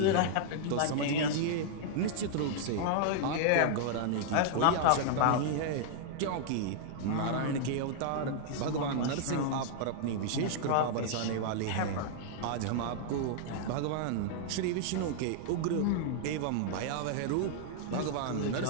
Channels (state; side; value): different; both; correlation -0.01